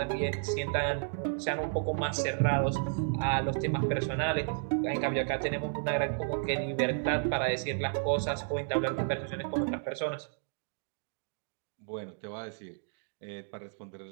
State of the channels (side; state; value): left; silent; digital silence